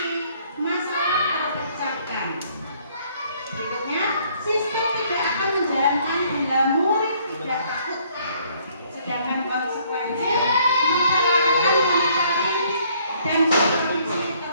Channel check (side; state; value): both; inverted; correlation -0.64